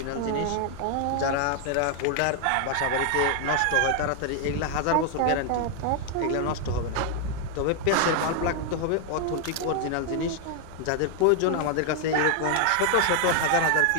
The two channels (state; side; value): different; both; correlation 0.00